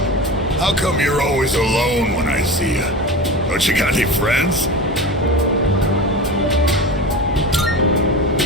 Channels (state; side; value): normal; both; correlation 0.28